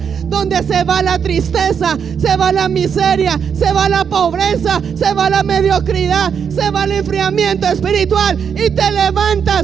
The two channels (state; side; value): quieter; left; 7.2 dB